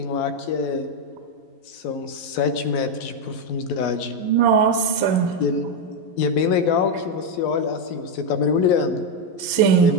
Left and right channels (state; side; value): late; right; 11 ms